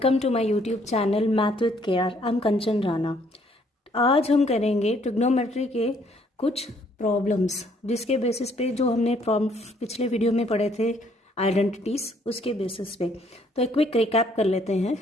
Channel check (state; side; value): normal; both; correlation 0.65